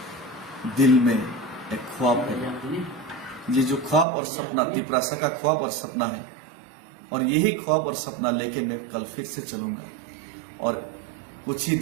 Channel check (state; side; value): drops out; left; at 4.0 s